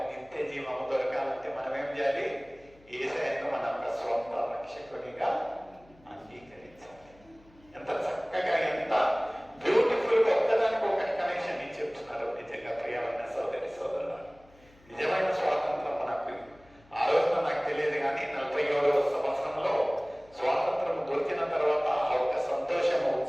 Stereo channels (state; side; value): noise; left; hum, 28 dB below the sound